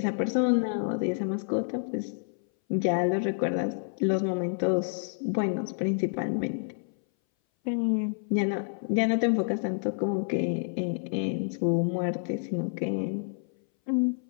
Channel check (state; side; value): silent; right; 58 dB below the other